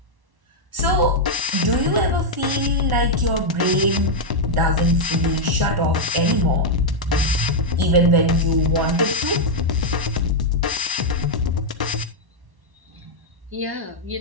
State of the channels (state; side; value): late; left; 1.1 ms